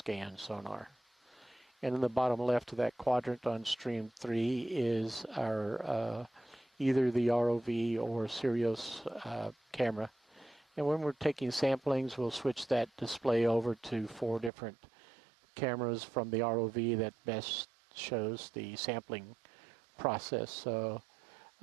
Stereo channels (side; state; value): left; drops out; at 14.5 s